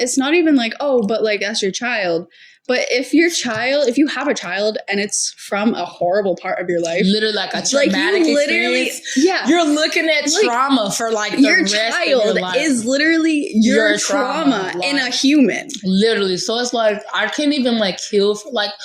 not even like, oh, but like that's your child. But if you have a child and it's from a horrible part of your life, literally like a traumatic experience, you're looking at trauma for like the your rest child of your life. is literally your trauma like, in a human. Literally, so it's like I can't even like heal. Like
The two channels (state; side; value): identical; both; correlation 1.00